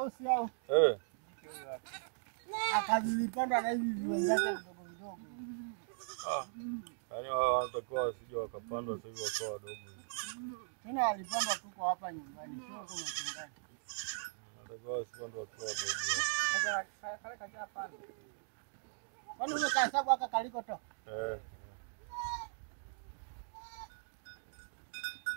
au? Akavipandwa na hivi viwenzake vidogo vidogo. Yaani wanatakiwa wasije wakapandwa sasa hivi wakawa wadogo. Tena alipandwa tuko hapa nyumbani, sio kwa mchungaji. Wanatakiwa wasipandwe wakiwa wadogo. Sasa kale kaja pale. Kwani umekahesabu aka kaliko to?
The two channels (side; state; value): left; silent; digital silence